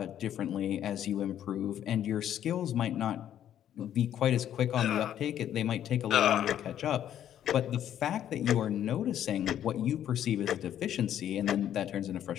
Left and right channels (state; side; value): quieter; right; 10.7 dB